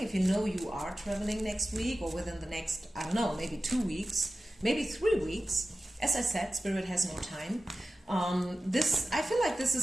you know you are traveling next week or within the next, I don't know, maybe 2 weeks, maybe 3 weeks, as I said, Spirit has no time. I feel like this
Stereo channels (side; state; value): both; normal; correlation 0.95